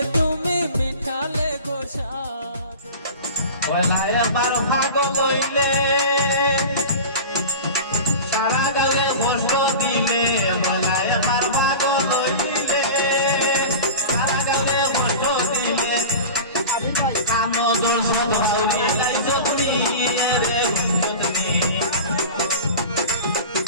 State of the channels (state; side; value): inverted; both; correlation -0.33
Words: তুমি মিঠালে গোসাদ। পয়লায় আবার ভাগল হইলে সারা গালে কষ্ট দিলে, পয়লায় আবার ভাগল হইলে সারা গালে কষ্ট দিলে, আনন্দর সদ ভাউরি লাইছত নিয়ে রে গুঞ্জত নিয়ে,